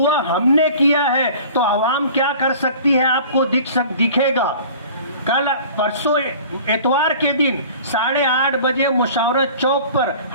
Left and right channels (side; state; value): both; inverted; correlation -0.44